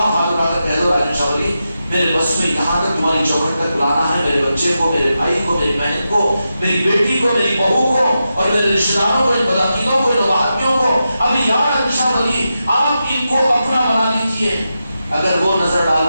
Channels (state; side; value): inverted; both; correlation -0.89